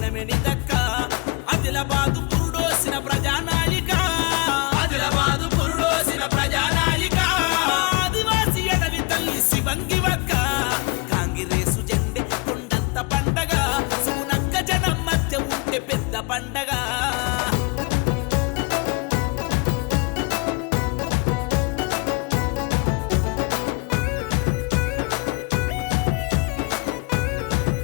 నిదక్క ఆదిలాబాదు పురుడోసిన ప్రజానాయిక ఆదిలాబాదు పురుడోసిన ప్రజానాయిక ఆదివాసి అడవి తల్లి శివంగివక్క కాంగ్రెసు జెండే కొండంత పండగ సుగునక్క జనం మధ్య ఉంటే పెద్ద పండగ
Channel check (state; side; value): quieter; right; 28.3 dB